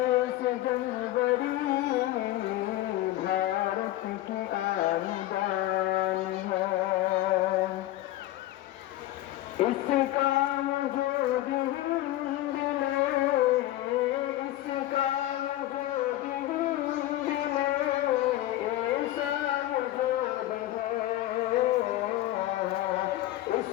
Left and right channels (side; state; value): right; quieter; 15.3 dB